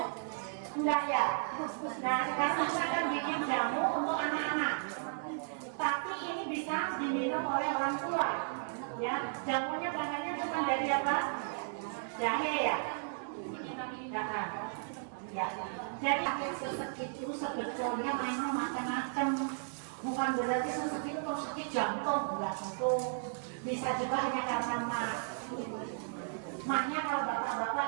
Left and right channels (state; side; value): silent; left; digital silence